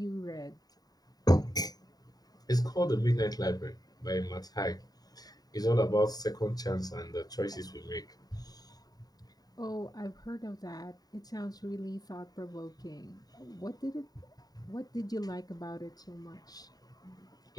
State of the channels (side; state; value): right; late; 0.18 ms